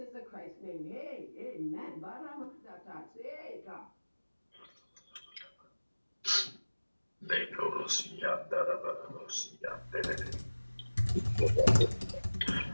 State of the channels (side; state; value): both; inverted; correlation -1.00